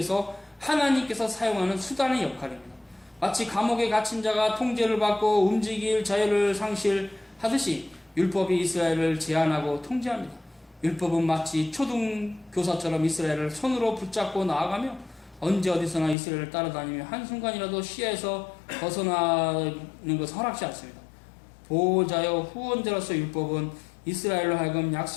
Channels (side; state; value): right; drops out; at 16.2 s